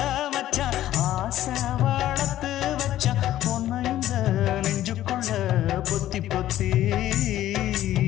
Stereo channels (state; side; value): quieter; right; 13.3 dB